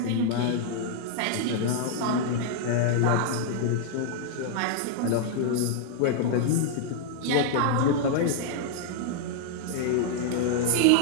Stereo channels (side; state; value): both; different; correlation 0.00